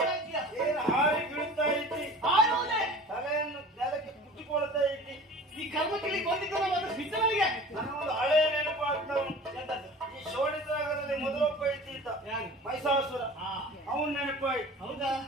ಇದ್ದೀಯ. ಏನು ಹಾರಿ ಬೀಳ್ತಾ ಇದ್ದಿ, ಆಡುವುದೇ ತಲೆಯನ್ನು ನೆಲಕ್ಕೆ ಕುಟ್ಟಿಕೊಳ್ತಾ ಇದ್ದಿ. ಈ ಕರ್ಮಕ್ಕಿಳಿ ಗೊಂದಿದ್ದು ಅದು ಬಿದ್ದವನಿಗೆ ನನಗೊಂದು ಹಳೆಯ ನೆನಪು ಆಗ್ತಾ ಉಂಟು. ಎಂತದ್ದು? ಈ ಶೋಣಿತರಾಗದಲ್ಲಿ ಮೊದಲೊಬ್ಬ ಇದ್ದ ಯಾರು? ಮೈಸಾಸುರ, ಆ, ಅವನ್ ನೆನಪಾಯ್ತು. ಹೌದಾ?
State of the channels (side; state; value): both; normal; correlation 0.41